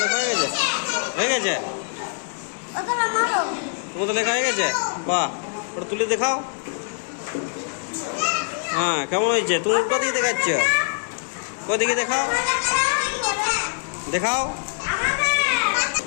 লেখা হয়ে গেছে? হয়ে গেছে? তোমার তো লেখা হয়ে গেছে? বাহ, ওটা তুলে দেখাও। হ্যাঁ, কেমন হয়েছে? তুমি কোথেকে দেখাচ্ছ? কোথেকে দেখাও, দেখাও।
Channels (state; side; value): silent; right; digital silence